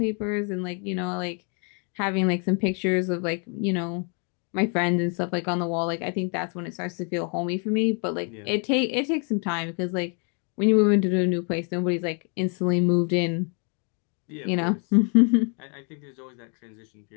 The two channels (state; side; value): quieter; right; 39.1 dB